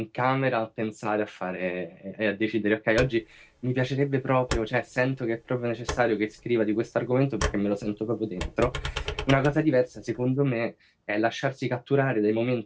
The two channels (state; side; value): identical; both; correlation 1.00